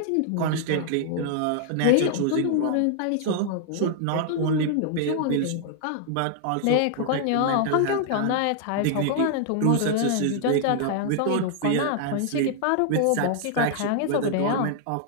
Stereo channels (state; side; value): different; both; correlation 0.00